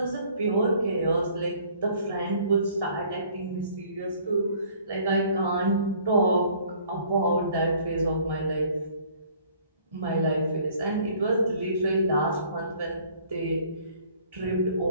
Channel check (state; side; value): inverted; both; correlation -0.56